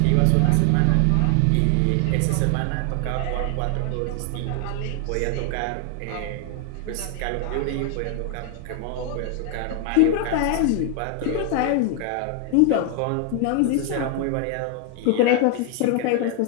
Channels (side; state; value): both; different; correlation 0.00